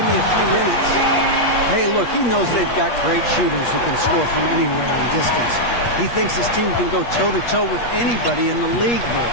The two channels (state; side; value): late; right; 8.4 ms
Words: me a few minutes. Hey, look, he knows they've got great shooters who can score from anywhere in distance. He thinks his team can go toe-to-toe with anybody in the league there.